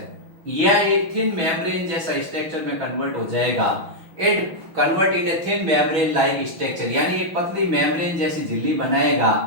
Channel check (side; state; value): left; late; 6.1 ms